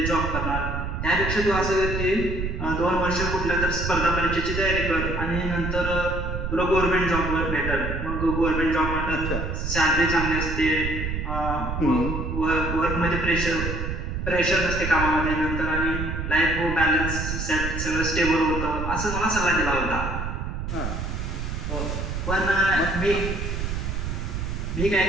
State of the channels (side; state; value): right; noise; rumble, 3 dB below the sound